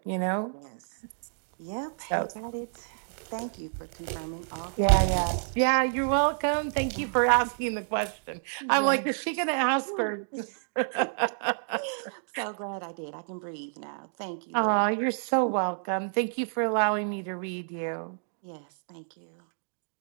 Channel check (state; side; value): silent; left; digital silence